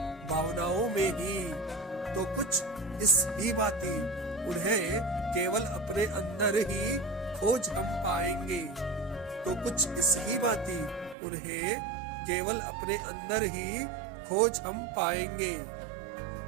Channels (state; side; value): drops out; left; at 11.2 s